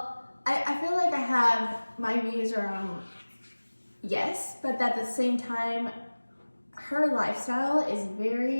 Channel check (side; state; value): both; inverted; correlation -1.00